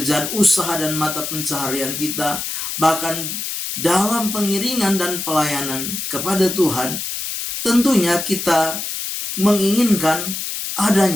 usaha dan mata pencaharian kita, bahkan dalam pengiringan dan pelayanan kepada Tuhan, tentunya kita menginginkan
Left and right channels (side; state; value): left; noise; hiss, 5 dB below the sound